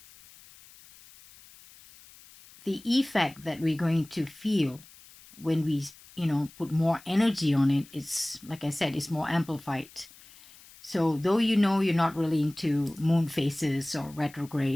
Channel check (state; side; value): noise; left; hiss, 23 dB below the sound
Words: the effect that we're going to feel when we, you know, put more energy on it, it's, like I said, it's more amplified. So though, you know, you're not really into moon phases or